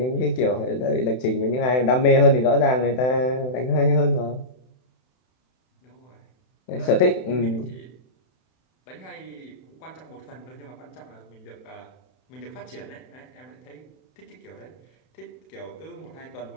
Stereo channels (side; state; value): right; late; 31 ms